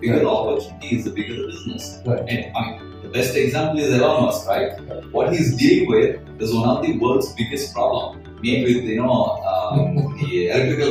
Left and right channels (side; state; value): both; identical; correlation 1.00